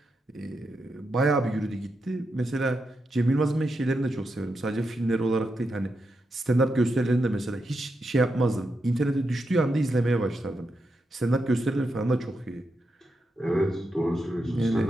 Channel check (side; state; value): both; normal; correlation 0.85